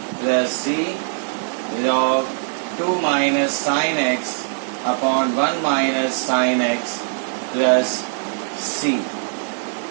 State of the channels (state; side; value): silent; left; 65 dB below the other